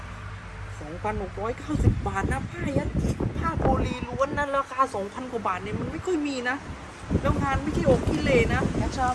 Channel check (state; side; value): identical; both; correlation 1.00